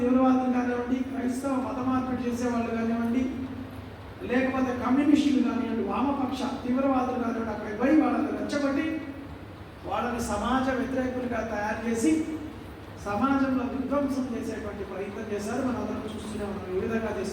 కానివ్వండి, క్రైస్తవ మత మార్పిడి చేసేవాళ్ళు కానివ్వండి, లేకపోతే కమ్యూనిస్టులు కానివ్వండి, వామపక్ష తీవ్రవాదులు కానివ్వండి, అక్కడికి పోయి వాళ్ళని రెచ్చగొట్టి వాళ్ళని సమాజ వ్యతిరేకులుగా తయారు చేసి సమాజంలో విధ్వంసం చేసేటువంటి ప్రయత్నం చేశారు. మనందరం చూస్తూనే ఉన్నాం ఏ విధంగా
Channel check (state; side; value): identical; both; correlation 1.00